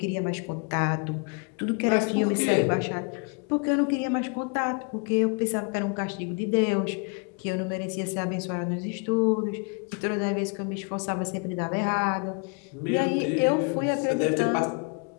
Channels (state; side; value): quieter; right; 34.8 dB